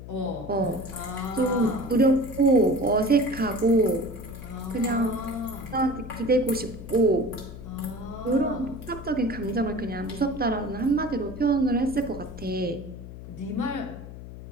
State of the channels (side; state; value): left; noise; hum, 13 dB below the sound